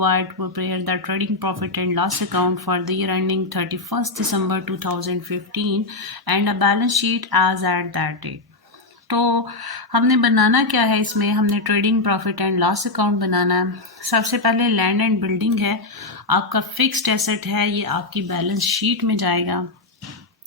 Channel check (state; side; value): quieter; right; 3.2 dB